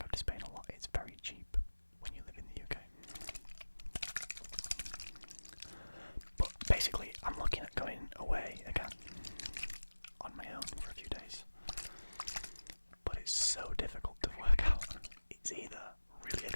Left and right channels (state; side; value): inverted; both; correlation -1.00